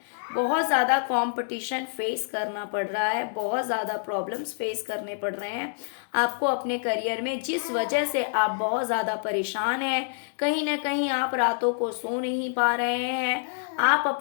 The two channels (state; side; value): silent; right; digital silence